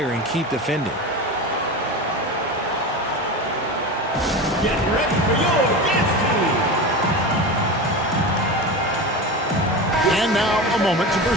and keep defending. Get ready for your dance team. And now a moment to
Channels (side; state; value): both; normal; correlation 0.26